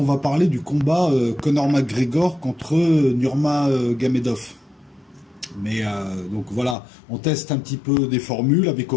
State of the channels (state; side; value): drops out; right; at 6.8 s